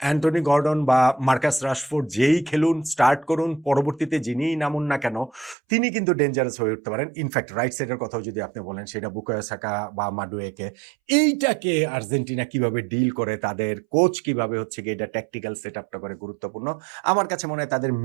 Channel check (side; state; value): left; drops out; at 5.6 s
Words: অ্যান্টনি গর্ডন বা মার্কাস রাশফোর্ড যেই খেলুন, স্টার্ট করুন, পরবর্তীতে যিনিই নামুন না কেন, তিনি কিন্তু ডেঞ্জারাস হয়ে উঠতে পারেন। ইনফ্যাক্ট রাইট সাইডের কথাও যদি আপনি বলেন, সেটা বুকায়ো সাকা বা মাডুয়েকে, এইটাকে আর্জেন্টিনা কিভাবে ডিল করে, তাদের কোচ কিভাবে হচ্ছে গিয়ে এটা ট্যাকটিক্যাল সেট আপটা করে গুরুত্বপূর্ণ। আমার কাছে মনে হয় তাদের